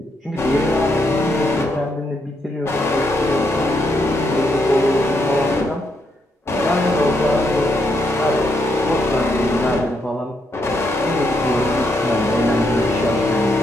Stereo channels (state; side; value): normal; both; correlation 0.78